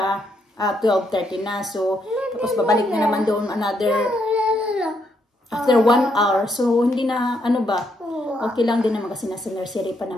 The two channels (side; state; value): both; normal; correlation 0.76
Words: 12:30 na. So, tapos babalik na naman doon after 1 hour. So, hindi na, okay lang din naman kasi nasa nursery pa